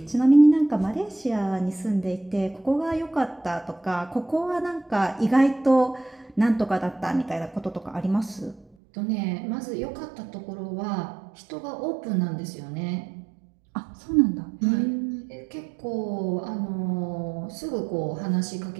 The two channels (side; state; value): left; drops out; at 8.7 s